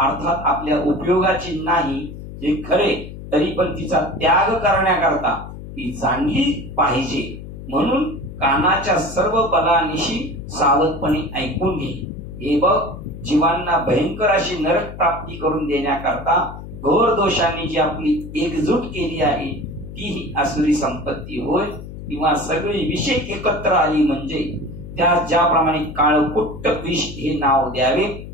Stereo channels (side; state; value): left; noise; hum, 12 dB below the sound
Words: आपल्या उपयोगाची नाही हे खरे, तरी पण तिचा त्याग करण्याकरता ती जाणली पाहिजे. म्हणून कानाच्या सर्व बलानिशी सावधपणे ऐकून घे. हे बघ, जीवांना भयंकर अशी नरक प्राप्ती करून देण्याकरता घोर दोषांनी जी आपली एकजूट केली आहे ती ही आसुरी संपत्ती होय. किंवा सगळी विषय एकत्र आली म्हणजे त्या ज्याप्रमाणे काळकुट्ट विष हे नाव द्यावे